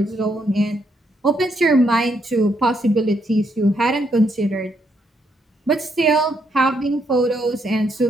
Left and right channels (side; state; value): both; normal; correlation 0.75